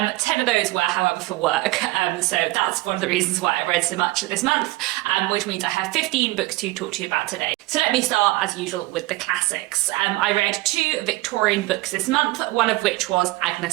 10 of those were, however, for work, so that's one of the reasons why I read so much this month, which means I have 15 books to talk to you about today. So let me start, as usual, with the classics. I read 2 Victorian books this month, one of which was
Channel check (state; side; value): quieter; left; 20.4 dB